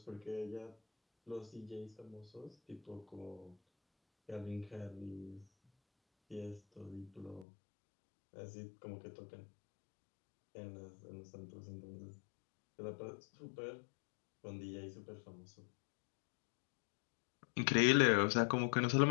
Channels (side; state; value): right; drops out; at 7.5 s